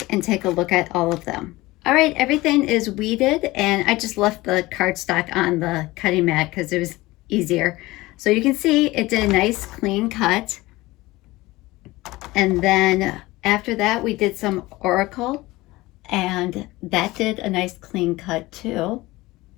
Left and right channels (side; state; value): right; quieter; 19.8 dB